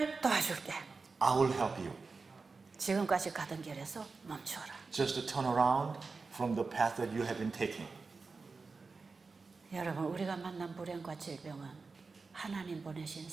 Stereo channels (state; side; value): quieter; left; 4.3 dB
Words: 도와줄게. I will help you. 지금까지 가던 길에서 멈춰라. Just to turn around from the path that you have been taking. 여러분, 우리가 만난 불행과 질병은 하나님 보내신